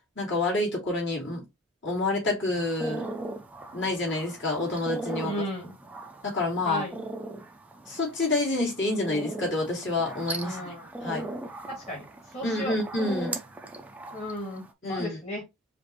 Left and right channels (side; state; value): both; normal; correlation 0.38